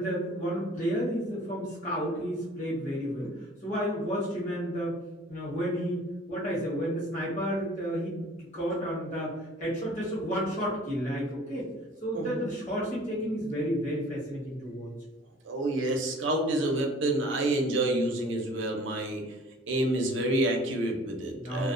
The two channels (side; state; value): both; normal; correlation 0.50